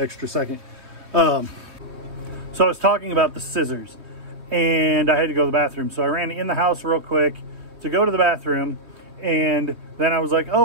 second. So I was talking about the scissors, and I had to go to the bathroom. So I ran in the house real quick to go to the bathroom, and then I was like,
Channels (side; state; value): left; late; 2.9 ms